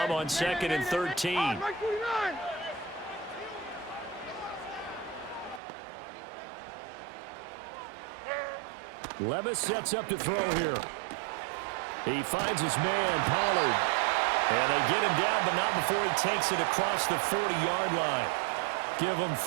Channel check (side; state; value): left; drops out; at 5.6 s